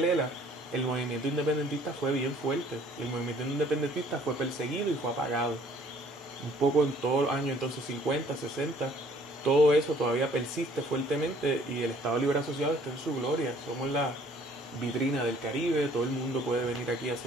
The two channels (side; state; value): both; normal; correlation 0.58